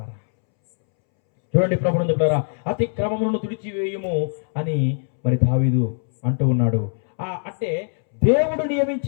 చూడండి ప్రభునందు పిల్లారా, అతిక్రమములను తుడిచివేయుము అని మరి దావీదు అంటూ ఉన్నాడు. అంటే దేవుడు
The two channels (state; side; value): silent; right; 64 dB below the other